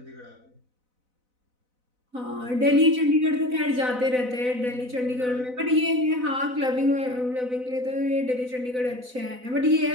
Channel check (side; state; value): left; late; 4.0 ms